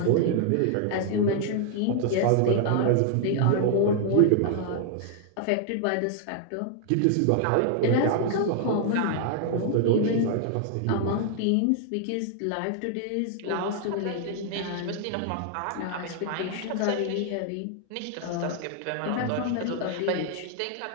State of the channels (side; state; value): both; different; correlation 0.00